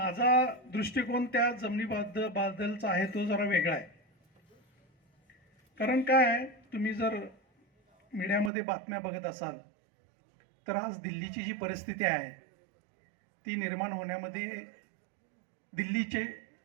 दृष्टिकोन त्या जमिनीबद्दलचा आहे तो जरा वेगळा आहे. कारण काय, तुम्ही जर मीडियामध्ये बातम्या बघत असाल तर आज दिल्लीची जी परिस्थिती आहे ती निर्माण होण्यामध्ये दिल्लीचे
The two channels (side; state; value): left; drops out; at 8.5 s